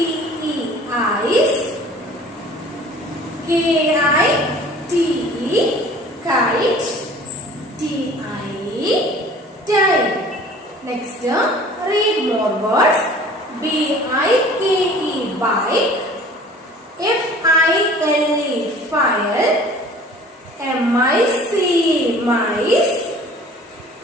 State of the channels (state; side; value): normal; both; correlation 0.47